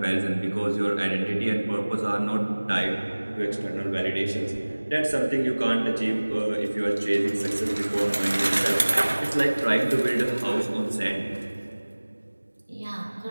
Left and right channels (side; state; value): both; inverted; correlation -1.00